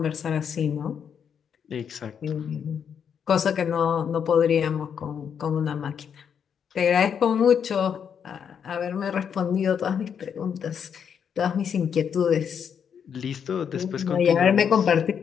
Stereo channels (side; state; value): right; quieter; 7.6 dB